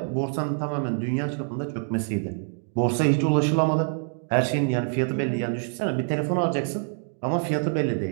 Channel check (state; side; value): silent; left; 61 dB below the other